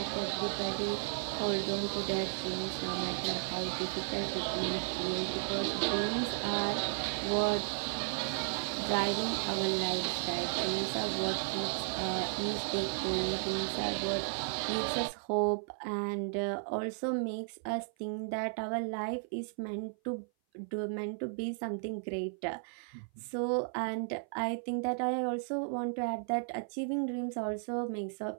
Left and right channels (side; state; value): left; silent; 55 dB below the other